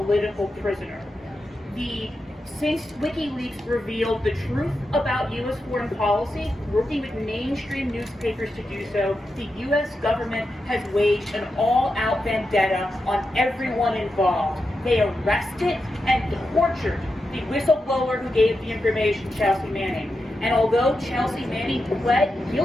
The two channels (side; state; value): both; normal; correlation 0.88